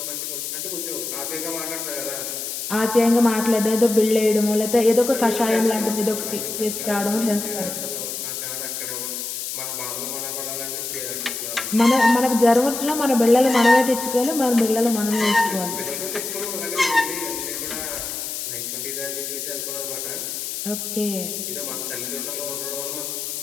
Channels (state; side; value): noise; left; hiss, 5 dB below the sound